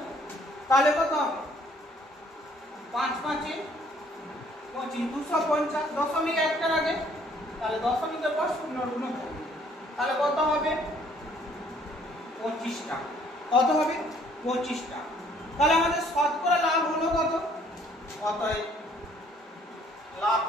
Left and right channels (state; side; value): normal; both; correlation 0.61